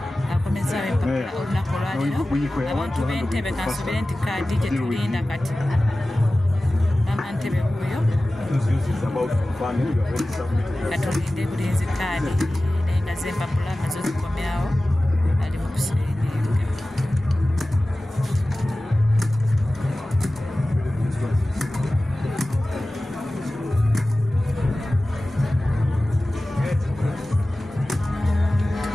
abantu b'Entebbe kansubire nti kaadi gye tulinda kati Mama Ntebe huyo katulinde bulinzi kaadi naye nga z'empapula nazo zikomyawo ali mu kusiringa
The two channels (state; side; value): normal; both; correlation 0.96